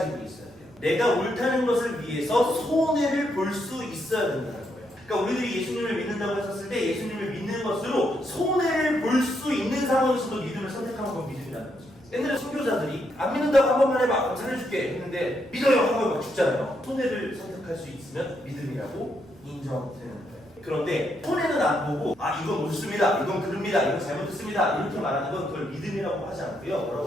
있어야 돼요. 내가 옳다는 것을 위해서 손해를 볼 수 있어야 된다는 거예요. 그러니까 우리들이 예수님을 믿는다고 했었을 때 예수님을 믿는 것으로 손해를 볼 수 있는 상황에서도 믿음을 선택하는 건 믿음이라는 거죠. 옛날에 선교자들이 안 믿는다고 한 번만 해봐 살려줄게 했는데 믿어요 하고 막 죽잖아요. 손해를 선택할 수 있으면 믿음이라고 인정되는 거예요. 그런데 손해는 안 보고 이건 옳습니다, 이건 그릅니다, 이건 잘못했습니다 이렇게 말하는 건 그걸 믿음이라고 하지 않고요. 뭐라고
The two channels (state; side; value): noise; right; rumble, 28 dB below the sound